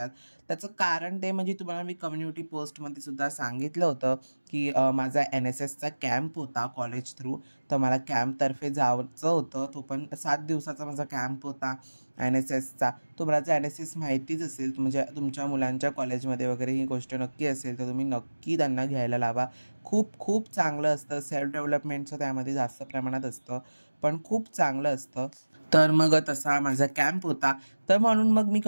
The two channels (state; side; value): inverted; both; correlation -1.00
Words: त्याचं कारण ते म्हणजे तुम्हाला मी कम्युनिटी पोस्टमध्ये सुद्धा सांगितलं होतं, की माझा NSSचा कॅम्प होता कॉलेज थ्रू. तर मला कॅम्पतर्फे जायचं होतं. तो पण 7 दिवसाचा माझा कॅम्प होता NSSचा. तुम्हाला जर NSS माहितीच असेल, म्हणजे तुमच्या मुलांच्या कॉलेजमध्ये वगैरे ही गोष्ट नक्की असेल, तर तुम्ही नक्की त्यांना घ्यायला लावा. खूप खूप चांगलं असतं. सेल्फ डेव्हलपमेंटचं त्यामध्ये जास्त प्रमाणात असतं, पण खूप चांगलं असतं. तर मग तसा माझा कॅम्प होता. तर म्हणून मग मी